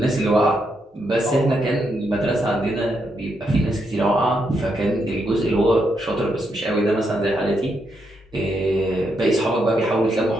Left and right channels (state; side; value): normal; both; correlation 0.80